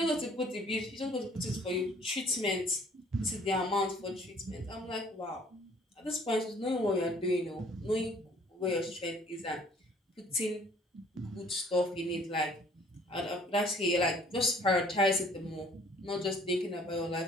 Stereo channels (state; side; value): normal; both; correlation 0.57